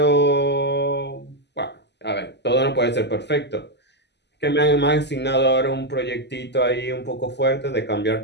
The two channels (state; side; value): late; right; 0.50 ms